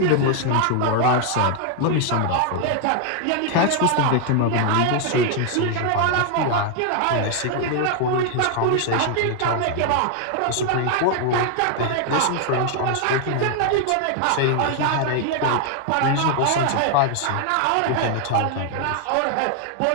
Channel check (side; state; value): both; different; correlation 0.00